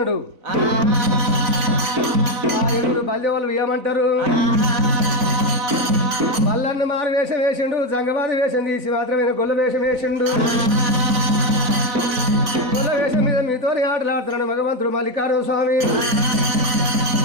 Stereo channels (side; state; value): left; late; 4.0 ms